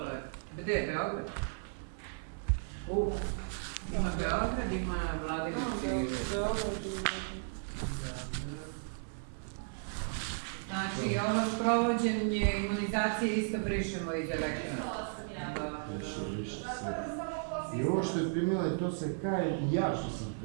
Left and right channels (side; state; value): left; silent; 55 dB below the other